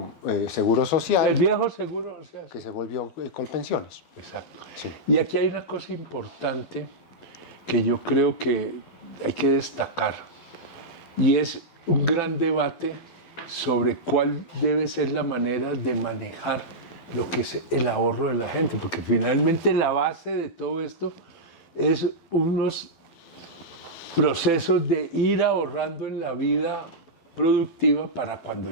Seguro Social. El viejo Seguro Social. Que se volvió Colpensiones. Exacto. Sí. Y aquí hay una cosa importante que yo creo que hay que destacar, y es un gran debate sobre cuál debe ser la manera de manejar lo que es el ahorro de la gente, porque finalmente la base de todo esto es unos procesos de ir ahorrando en la vida productiva para cuando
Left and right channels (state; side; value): late; right; 12 ms